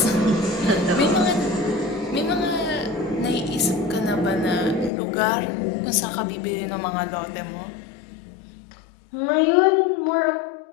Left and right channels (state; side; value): drops out; right; at 4.9 s